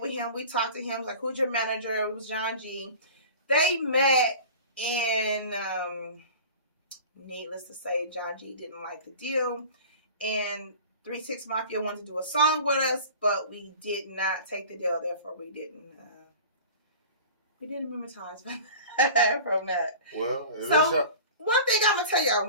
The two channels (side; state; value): both; inverted; correlation -0.40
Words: with him. We talked to him, like, who's your manager? It was John G. They met, and needless to say, John G didn't like the deal. And 3-6 Mafia wanted to do a song with us, but we did not take the deal. Therefore, we didn't monetize from that. Well, so one thing I'm gonna tell y'all: